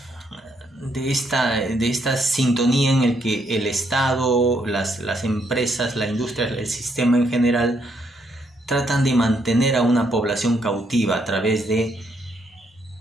esta sintonía en el que el Estado, las empresas, la industria, el sistema en general tratan de mantener a una población cautiva a través de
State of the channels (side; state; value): both; normal; correlation 0.74